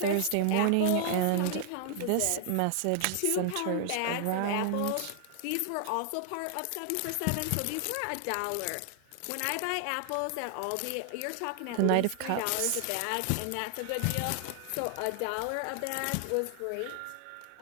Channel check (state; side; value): different; both; correlation 0.00